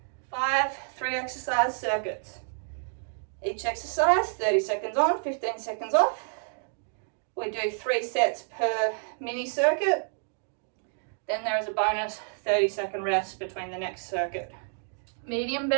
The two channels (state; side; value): silent; left; digital silence